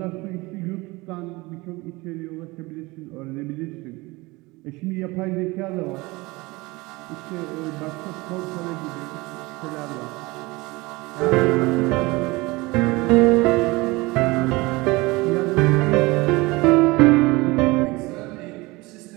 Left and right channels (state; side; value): quieter; left; 22.7 dB